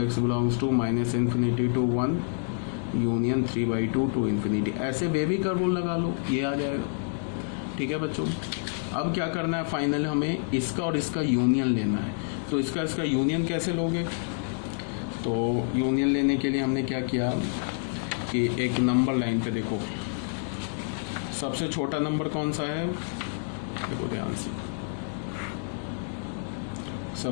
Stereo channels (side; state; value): right; silent; digital silence